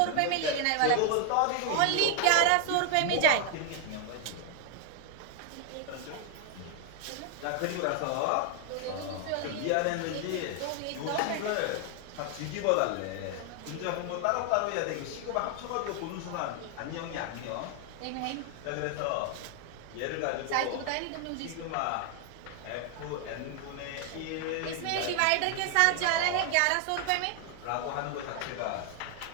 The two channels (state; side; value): different; both; correlation 0.00